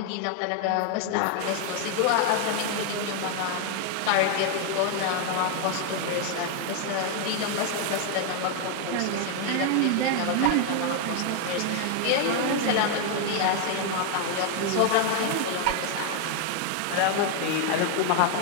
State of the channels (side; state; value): both; different; correlation 0.01